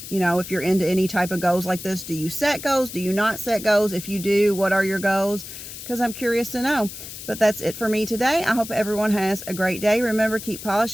You know, if you're into any type of goals like this. Do you set goals? Do you not set goals? If you do, what are your goals? Because I'm curious to know. But that's it for me today. I hope everyone has a great day. Remember, keep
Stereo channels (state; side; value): noise; left; hiss, 11 dB below the sound